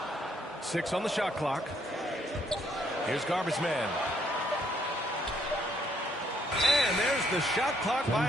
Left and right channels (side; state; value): both; normal; correlation 0.70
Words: 6 on the shot clock. Here's Garbage Man. And there's the shot clock